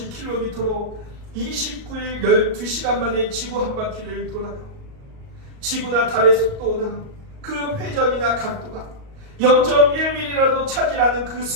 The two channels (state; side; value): late; left; 38 ms